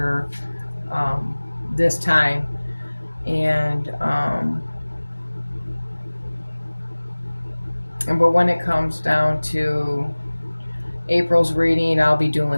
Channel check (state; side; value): inverted; both; correlation -1.00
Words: um, this time, and but when it comes down to April's reading, I'll be